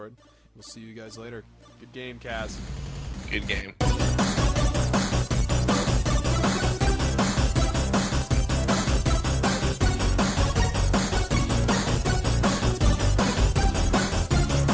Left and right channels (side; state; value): both; identical; correlation 1.00